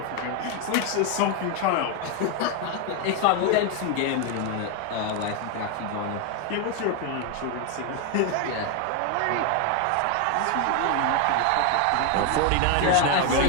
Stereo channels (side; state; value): both; different; correlation 0.01